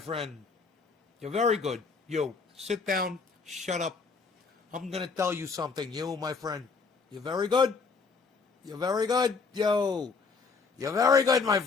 You're very good. Yo, sit down. Shut up. I'm going to tell you something. You, my friend. You're very good. You're very good. Yo. You're very good, my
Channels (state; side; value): quieter; right; 4.7 dB